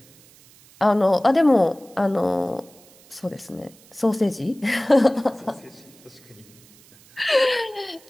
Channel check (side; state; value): right; noise; hiss, 26 dB below the sound